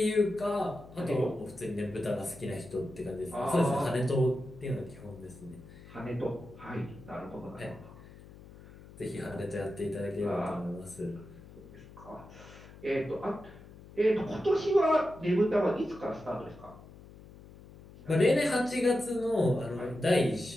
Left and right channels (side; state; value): left; noise; hum, 19 dB below the sound